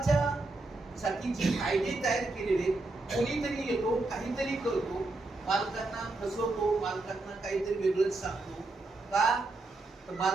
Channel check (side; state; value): left; quieter; 3.1 dB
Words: साठी जे कायदे तयार केलेले, कोणीतरी येतो काहीतरी करतो, मालकांना फसवतो, मालकांना काहीतरी वेगळंच सांगतो का, तर